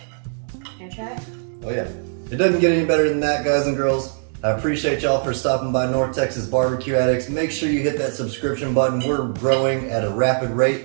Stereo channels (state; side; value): silent; left; digital silence